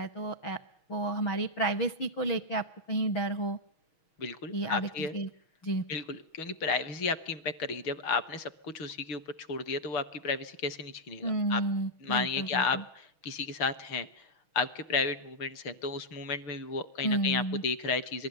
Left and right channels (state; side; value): late; right; 6.3 ms